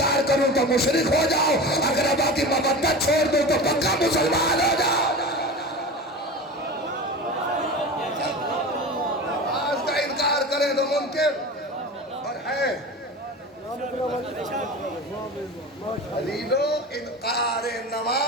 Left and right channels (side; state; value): both; normal; correlation 0.31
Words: کروں تو مشرک ہو جاؤ، اقربا کی مودت چھوڑ دوں تو پکا مسلمان ہو جاؤ۔ کرے تو منکر اور ہے علیلو، انکار